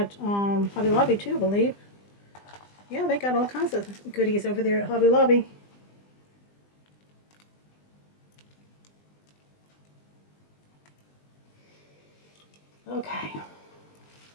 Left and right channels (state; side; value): late; right; 20 ms